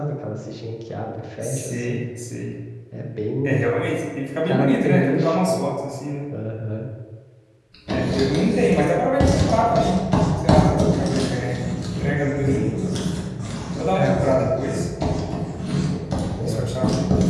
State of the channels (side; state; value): both; identical; correlation 1.00